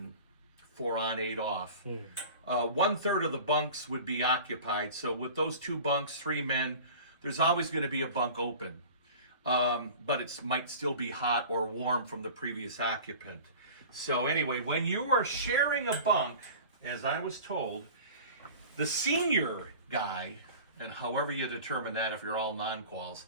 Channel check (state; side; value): inverted; both; correlation -0.39